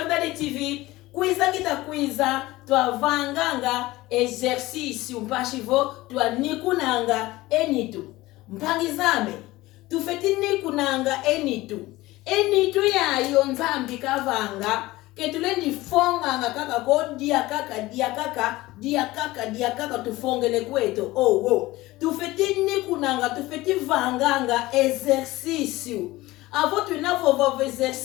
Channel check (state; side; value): quieter; right; 18.7 dB